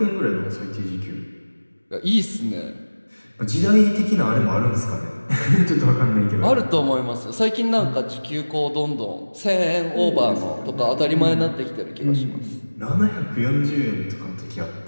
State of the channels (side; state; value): both; inverted; correlation -1.00